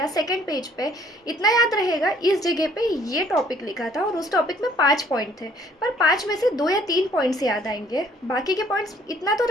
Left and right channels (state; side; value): normal; both; correlation 0.60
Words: सेकंड पेज पे। इतना याद रहेगा इस जगह पे ये टॉपिक लिखा था और उस टॉपिक में 5 पॉइंट थे, पर 5 में से 2 या 3 पॉइंट्स याद आएंगे, बाकी के पॉइंट्स इतना तो